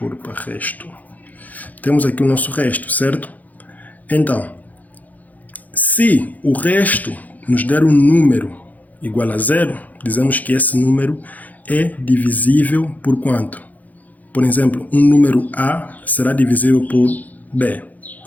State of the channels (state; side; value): late; right; 0.080 ms